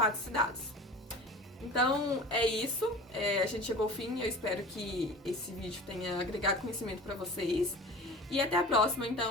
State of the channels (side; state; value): both; normal; correlation 0.38